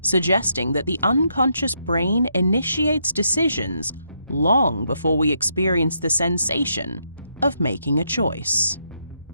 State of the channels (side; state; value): both; inverted; correlation -0.78